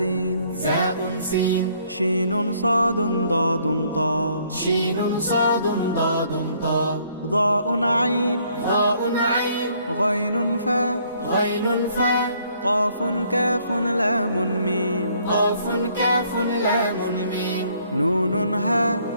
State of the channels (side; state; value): both; inverted; correlation -0.65